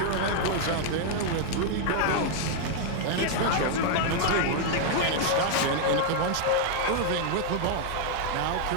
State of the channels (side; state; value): both; different; correlation 0.00